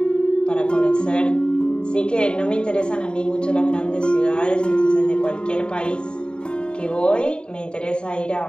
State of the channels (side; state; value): right; late; 0.050 ms